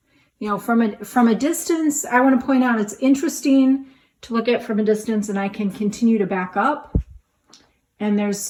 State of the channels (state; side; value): identical; both; correlation 1.00